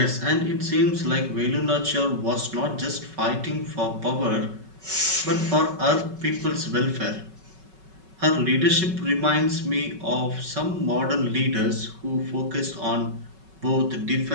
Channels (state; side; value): late; left; 5.3 ms